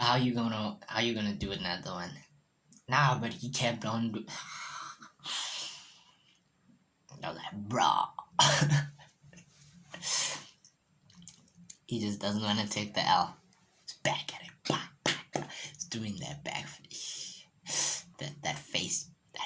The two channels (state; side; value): identical; both; correlation 1.00